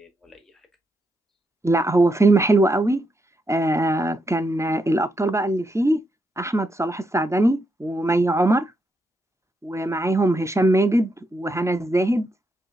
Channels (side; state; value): both; normal; correlation 0.81